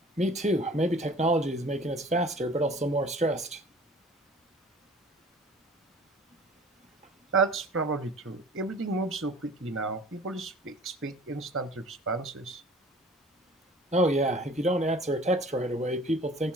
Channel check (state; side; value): normal; both; correlation 0.47